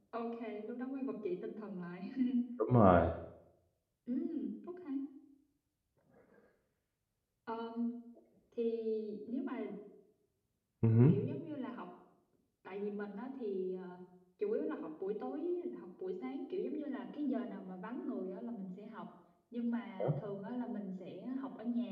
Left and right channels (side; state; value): both; identical; correlation 1.00